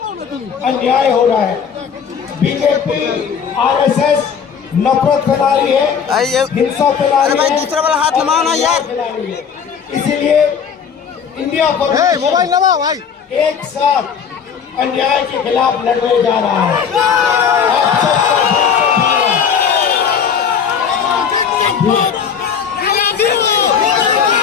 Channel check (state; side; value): quieter; right; 7.1 dB